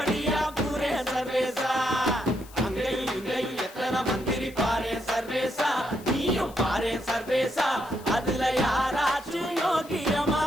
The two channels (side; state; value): left; noise; hiss, 21 dB below the sound